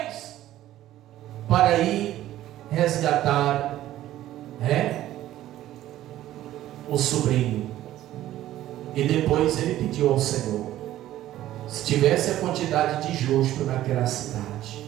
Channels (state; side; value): quieter; left; 13.8 dB